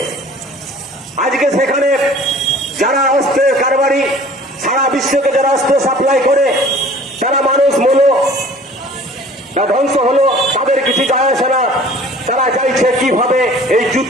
আজকে সেখানে যারা অস্ত্রের কারবারি, সারা বিশ্বকে যারা অস্ত্র সাপ্লাই করে, যারা মানুষ মূল্য ধ্বংস হলো, তাদের কিছু যায় আসে না। তারা চাইছে কিভাবে এই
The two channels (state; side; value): normal; both; correlation 0.48